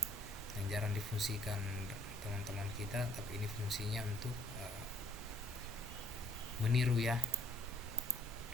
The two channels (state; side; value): normal; both; correlation 0.62